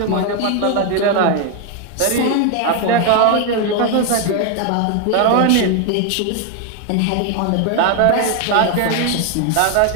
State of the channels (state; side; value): different; both; correlation 0.01